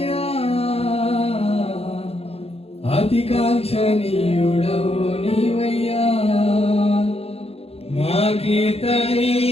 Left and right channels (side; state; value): right; late; 0.29 ms